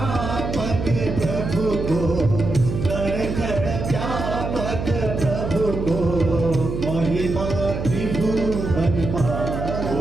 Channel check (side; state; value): right; noise; hum, 5 dB below the sound